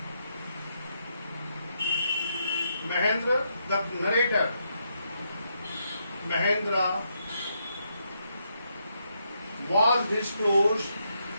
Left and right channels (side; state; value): both; inverted; correlation -0.79